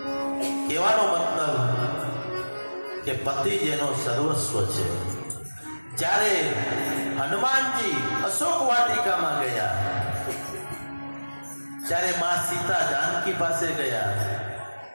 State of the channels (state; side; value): inverted; both; correlation -1.00